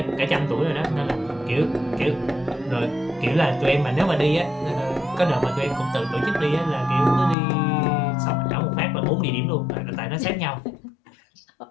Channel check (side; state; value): right; drops out; at 7.4 s